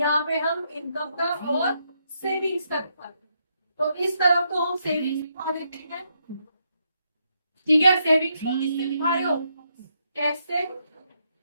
पे हम इनकम का और सेविंग्स का दिखा रहे हैं। तो इस तरफ तो हम सेविंग्स दिखा देते हैं, ठीक है। सेविंग्स को किससे दिखा रहे हो? कैसे?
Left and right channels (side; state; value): both; inverted; correlation -0.78